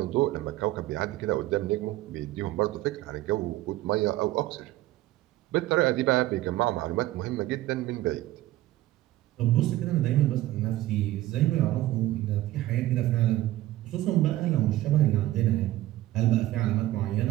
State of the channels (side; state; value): left; quieter; 15.7 dB